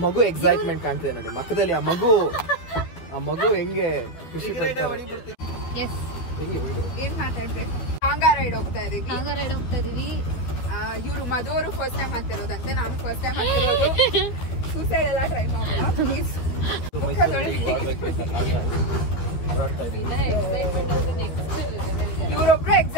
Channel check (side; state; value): right; late; 12 ms